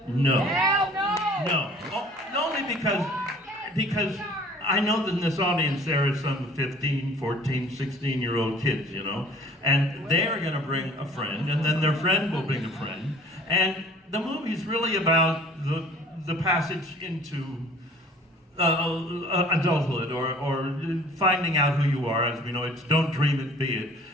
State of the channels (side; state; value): both; normal; correlation 0.50